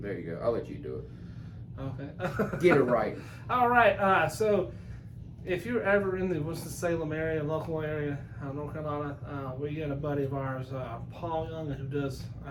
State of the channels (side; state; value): both; identical; correlation 1.00